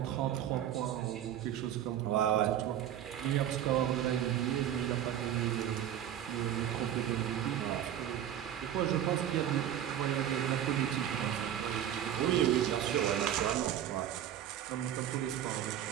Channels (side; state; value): left; quieter; 10.7 dB